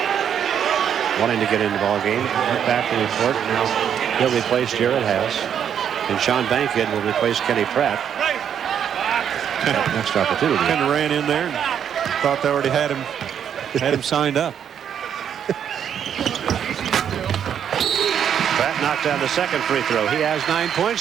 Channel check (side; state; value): left; quieter; 8.7 dB